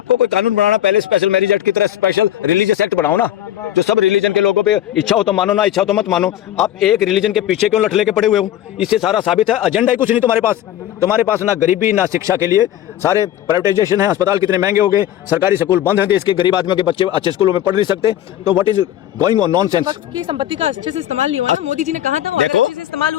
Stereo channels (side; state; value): right; quieter; 12.0 dB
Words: कोई कानून बनाना, पहले स्पेशल मैरिज एक्ट की तरह स्पेशल रिलीजियस एक्ट बनाओ ना, जो सब रिलीजन के लोगों पे इच्छा हो तो मानो, ना इच्छा हो तो मत मानो। आप एक रिलीजन के पीछे क्यों लठ लेके पड़े हुए हो? इससे सारा साबित है एजेंडा ही कुछ नहीं तुम्हारे पास ना गरीबी ना शिक्षा के लिए सारे प्राइवेटाइजेशन है, अस्पताल कितने महंगे हो गए, सरकारी स्कूल बंद हैं, देश के गरीब आदमियों के बच्चे अच्छे स्कूलों में पढ़ नहीं सकते। तो what is going on nonsense. वक्त की संपत्ति का अच्छे से इस्तेमाल नहीं हुआ ना, मोदी जी ने कहा था वो अगर अच्छे से इस्तेमाल